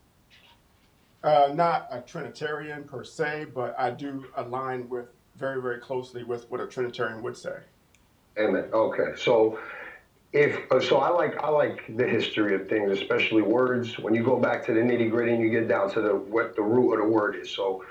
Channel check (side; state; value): both; identical; correlation 1.00